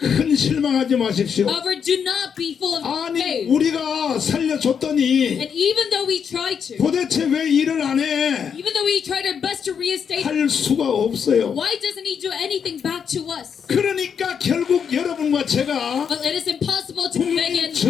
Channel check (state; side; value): quieter; right; 7.1 dB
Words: 실망하지 마십시오. However, do not be full of 아니 faith. 우리가 살려줬더니 And even though we try to, 도대체 왜 일을 안 해? even though we tried our best to reinstate, 할 수가 없어요. why doesn't he do anything back to us? 그러니까 결국 여러분과 제가 Well, it is impossible to 국민 begin.